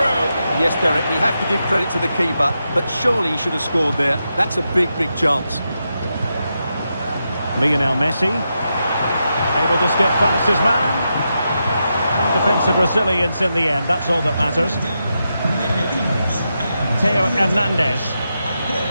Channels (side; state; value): both; inverted; correlation -0.86